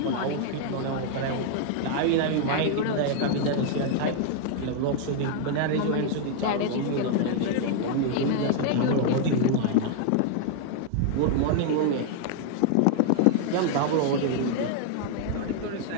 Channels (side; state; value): both; different; correlation 0.00